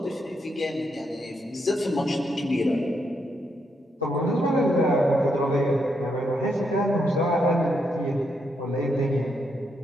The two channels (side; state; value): both; normal; correlation 0.79